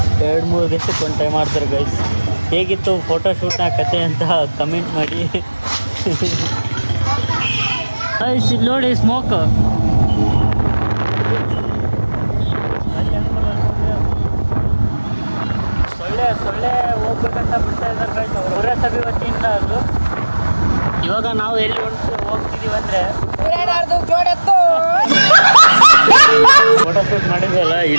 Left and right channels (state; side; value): inverted; both; correlation -1.00